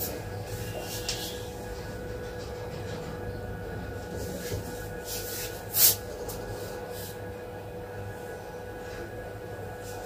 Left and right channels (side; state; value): both; identical; correlation 1.00